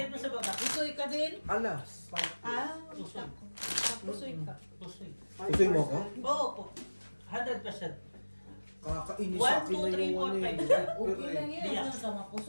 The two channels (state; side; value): inverted; both; correlation -1.00